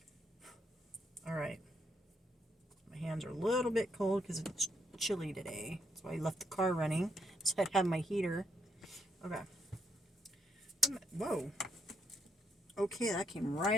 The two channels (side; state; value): both; normal; correlation 0.76